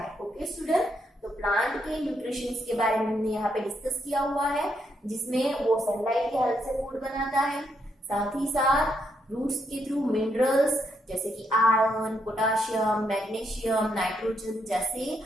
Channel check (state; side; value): normal; both; correlation 0.78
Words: ओके स्टूडेंट, तो प्लांट के न्यूट्रिशंस के बारे में हमने यहाँ पे डिस्कस किया हुआ है, जिसमें वो सनलाइट की हेल्प से फूड बनाता है, साथ ही साथ रूट्स के थ्रू मिनरल्स जैसे कि आयरन, पोटाशियम, मैग्नीशियम, नाइट्रोजन जैसे